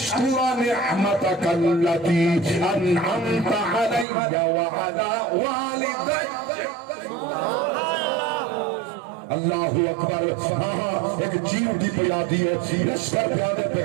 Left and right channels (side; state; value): left; drops out; at 4.0 s